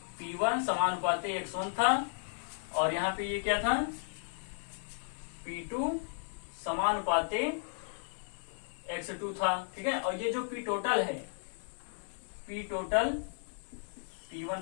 P1 समानुपाती x1 था, और यहाँ पे ये क्या था, P2 समानुपाती x2 था। ठीक है, और ये जो P टोटल है, P total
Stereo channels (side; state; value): right; silent; 55 dB below the other